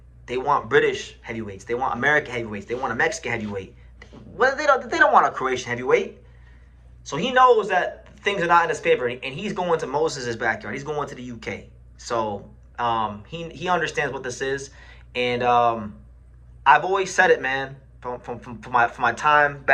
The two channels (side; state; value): both; identical; correlation 1.00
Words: They want British heavyweights. They want American heavyweights. They want a Mexican heavyweight. Well, they don't want a Croatian heavyweight. So he knows that things are not in his favor, and he's going to Moses' backyard. He's going to the UK. So he understands what this is, and I've always said it, man. From my time